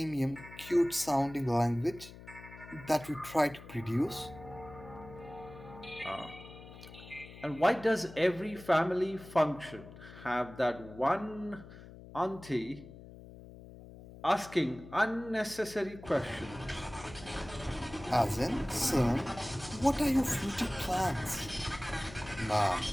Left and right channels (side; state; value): left; noise; hum, 16 dB below the sound